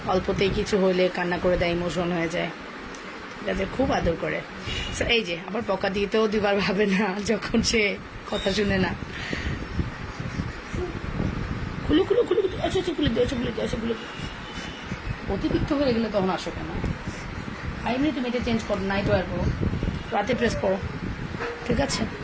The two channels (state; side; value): identical; both; correlation 1.00